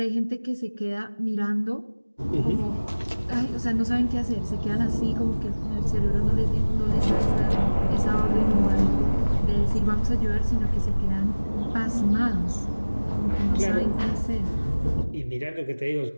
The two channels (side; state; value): both; inverted; correlation -1.00